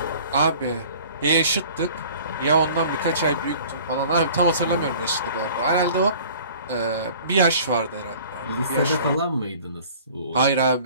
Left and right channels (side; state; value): both; inverted; correlation -0.48